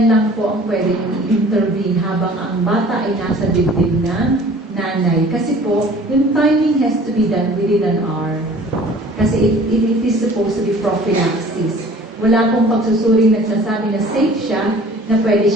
lang po ang pwede yung intervene habang ang bata ay nasa dibdib ng nanay. Kasi po, yung timing has to be done within an hour. Kasi it is supposed to be prophylaxis. Wala pong pagsusuring nagsasabi na safe siya, na pwede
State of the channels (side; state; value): both; normal; correlation 0.49